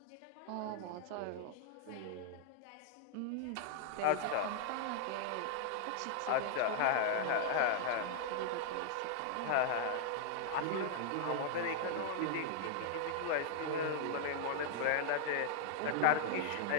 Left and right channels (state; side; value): different; both; correlation 0.00